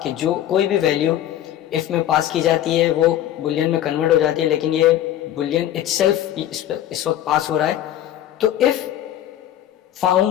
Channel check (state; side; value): quieter; right; 11.9 dB